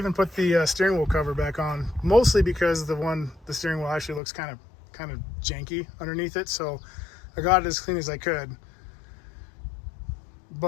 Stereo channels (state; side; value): drops out; right; at 4.2 s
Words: put the steering wheel cover back on, mostly because the steering wheel actually looks kind of janky underneath it. So I got it as clean as I could.